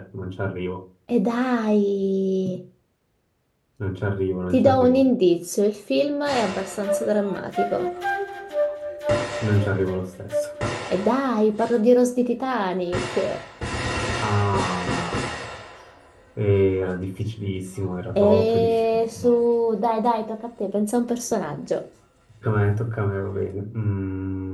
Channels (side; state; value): both; identical; correlation 1.00